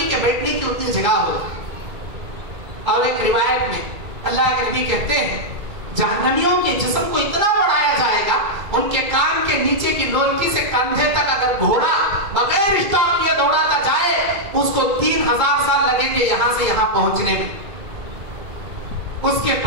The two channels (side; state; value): left; late; 2.2 ms